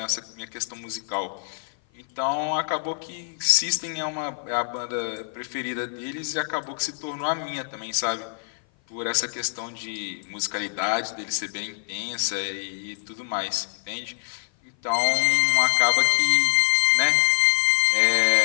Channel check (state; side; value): silent; right; 55 dB below the other